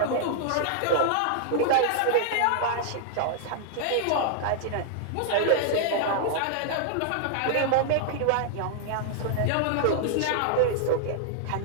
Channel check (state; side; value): different; both; correlation -0.01